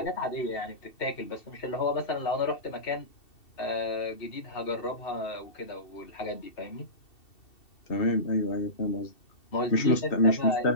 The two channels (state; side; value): late; right; 2.7 ms